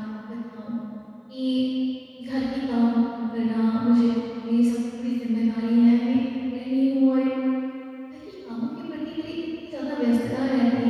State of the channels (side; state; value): both; identical; correlation 1.00